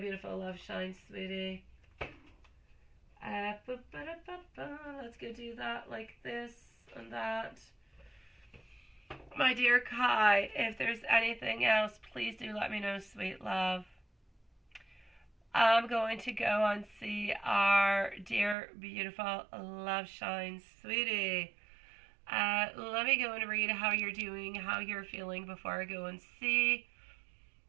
love shine, sweetie. Let's go do that like this and that. My dear Kai, if there's anything else, please do let me know, sweet love. I'm going to go and see our dear, beautiful love shine, sweetie. Let me go and read how you're doing, how you're feeling before I go and see.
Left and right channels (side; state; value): left; drops out; at 18.6 s